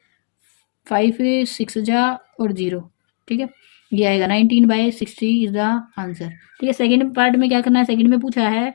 5 6 जा और 0, ठीक है। ये आएगा 19/60 इज द आंसर, ठीक है। सेकंड पार्ट में क्या करना है, सेकंड में पूछा है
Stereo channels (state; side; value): silent; right; 59 dB below the other